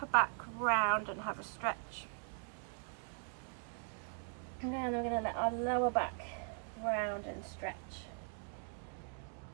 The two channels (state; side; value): silent; left; 51 dB below the other